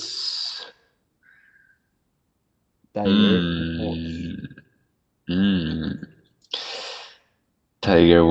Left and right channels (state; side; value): identical; both; correlation 1.00